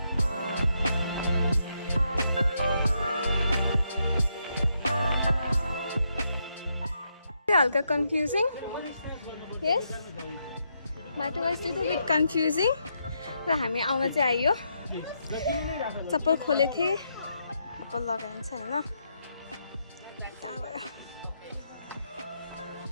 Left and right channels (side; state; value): both; inverted; correlation -0.79